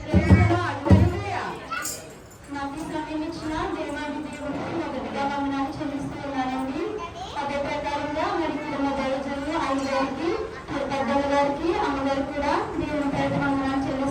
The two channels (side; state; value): both; identical; correlation 1.00